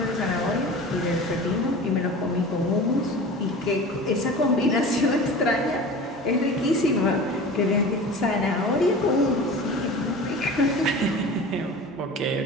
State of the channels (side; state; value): both; normal; correlation 0.36